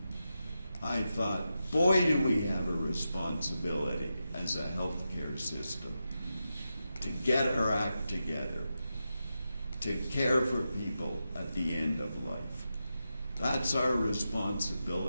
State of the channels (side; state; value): both; inverted; correlation -0.89